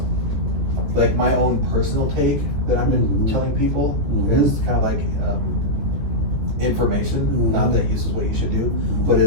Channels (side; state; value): left; late; 14 ms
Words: like my own personal take that I've been telling people is kind of like information. Not that this is what you should do, but